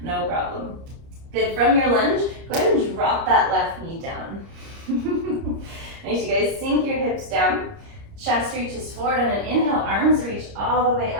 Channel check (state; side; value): late; left; 30 ms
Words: No problem. Good. From your lunge, go ahead and drop that left knee down. Nice, you guys. Sink your hips down. Chest reaches forward on an inhale. Arms reach all the way